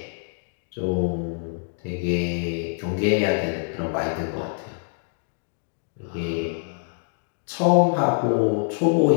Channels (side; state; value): right; silent; 56 dB below the other